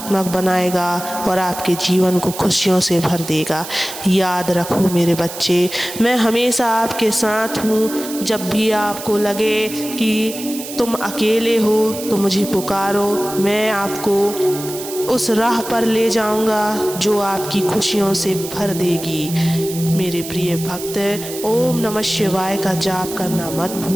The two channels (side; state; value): right; noise; hiss, 10 dB below the sound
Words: बनाएगा और आपके जीवन को खुशियों से भर देगा। याद रखो मेरे बच्चे, मैं हमेशा आपके साथ हूँ। जब भी आपको लगे कि तुम अकेले हो तो मुझे पुकारो, मैं आपको उस राह पर ले जाऊंगा जो आपकी खुशियों से भर देगी। मेरे प्रिय भक्त, ओम नमः शिवाय का जाप करना मत